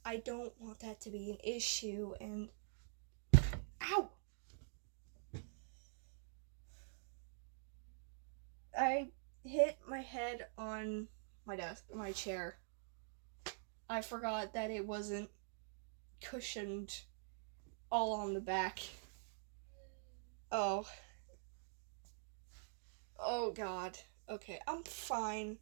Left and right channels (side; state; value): left; silent; digital silence